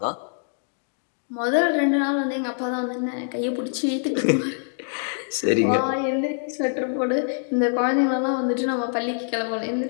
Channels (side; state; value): right; silent; 62 dB below the other